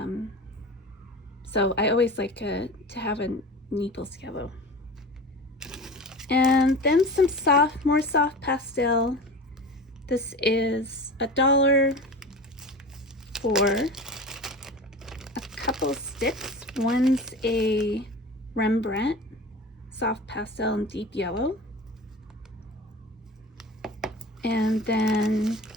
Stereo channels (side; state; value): both; normal; correlation 0.34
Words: So I always like to have a Naples Yellow. And then some more soft pastel. This is $1 for a couple sticks. One's a Rembrandt soft pastel and deep yellow. And then